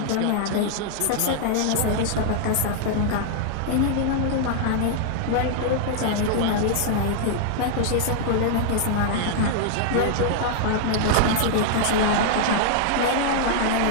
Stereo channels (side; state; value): both; different; correlation -0.01